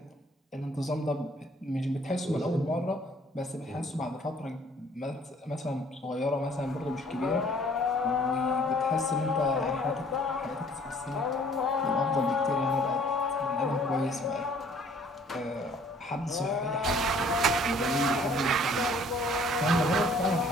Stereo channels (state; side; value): normal; both; correlation 0.57